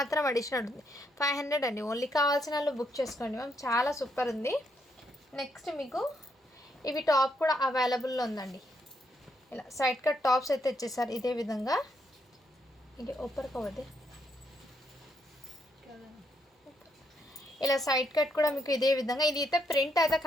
అడిషనల్ ఉంటుంది. 500 అండి. ఓన్లీ కావాల్సిన వాళ్ళు బుక్ చేసుకోండి మ్యామ్. చాలా సూపర్ ఉంది. నెక్స్ట్ మీకు ఇవి టాప్ కూడా అవైలబుల్లో ఉందండి. ఇలా సైడ్ కట్ టాప్స్ అయితే ఇచ్చేసారు ఇదే విధంగా. ఇది ఓపర్ కవదే ఇలా సైడ్ కట్ కూడా మీకు ఇదే విధంగా. ఇది అయితే ప్రింట్ అయితే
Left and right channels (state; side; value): normal; both; correlation 0.76